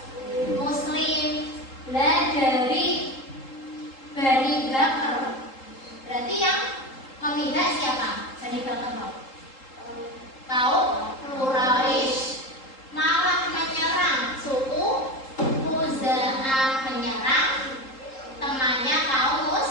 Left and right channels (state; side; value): late; right; 3.8 ms